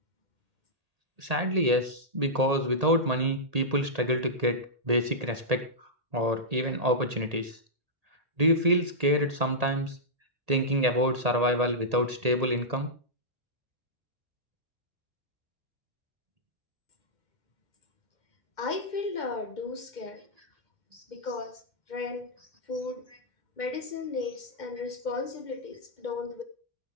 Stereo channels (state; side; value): late; left; 1.8 ms